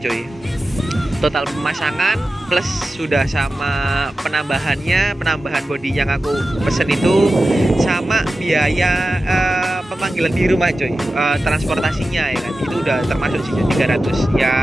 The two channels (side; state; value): both; normal; correlation 0.93